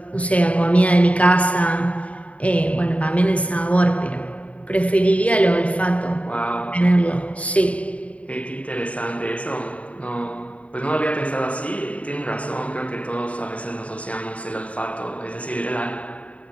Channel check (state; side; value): late; right; 0.066 ms